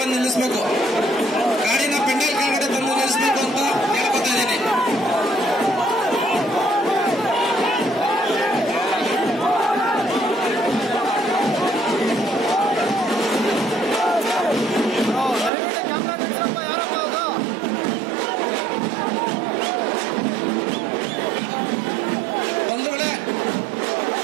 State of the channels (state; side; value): drops out; left; at 15.5 s